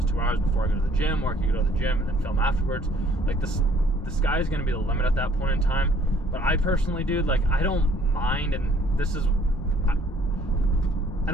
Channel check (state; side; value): normal; both; correlation 0.61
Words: 2 hours before I go to the gym, or I can go to the gym and then film afterwards. Like, the sky is going to be the limit at that point in time. But I personally, dude, like, I don't mind, and this is, I